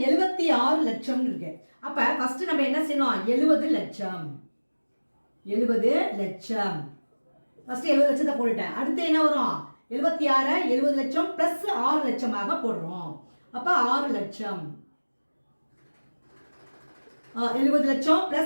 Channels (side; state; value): both; inverted; correlation -1.00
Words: 76 லட்சம் இருக்கு. அப்போ ஃபர்ஸ்ட் நம்ம என்ன செய்யணும்? 70 லட்சம் ஃபர்ஸ்ட் 70 லட்சத்தை போட்டுட்டேன். அடுத்து என்ன வரும்? 76 70 லட்சம் பிளஸ் 6 லட்சமாக போடுறோம். அப்ப 6 லட்சம் 70 லட்சம்